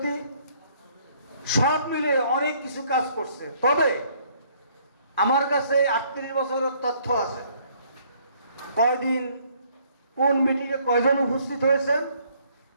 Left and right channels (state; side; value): inverted; both; correlation -0.64